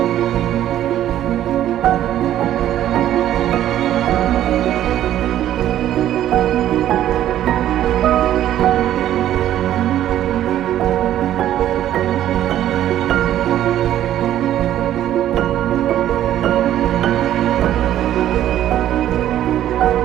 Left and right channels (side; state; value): left; quieter; 12.1 dB